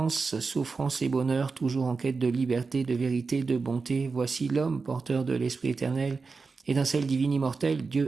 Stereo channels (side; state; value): left; quieter; 4.5 dB